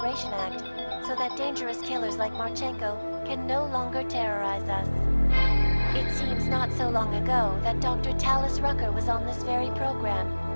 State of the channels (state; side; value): inverted; both; correlation -1.00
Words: Act so that dangerous killers like Marchenko can no longer terrorize us? It seems not so long ago that Dr. Talis Rucker was on this very program,